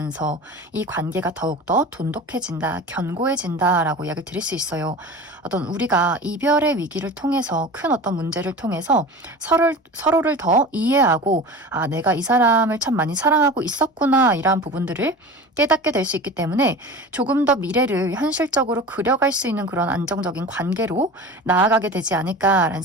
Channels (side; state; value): both; normal; correlation 0.34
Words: 이 관계가 더욱더 돈독해진다, 견고해진다라고 이야기를 드릴 수 있어요. 어떤 우리가 이별의 위기를 통해서, 큰 어떤 문제를 통해서 서로를 더 이해하고, 아, 내가 이 사람을 참 많이 사랑하고 있었구나, 이러한 부분들을 깨닫게 될 수 있기 때문에 조금 더 미래를 현실적으로 그려갈 수 있는 그런 안정적인 관계로 나아가게 되지 않을까라는